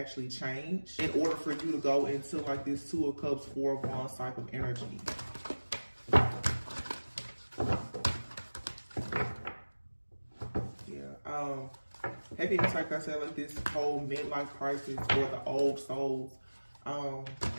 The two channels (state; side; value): inverted; both; correlation -1.00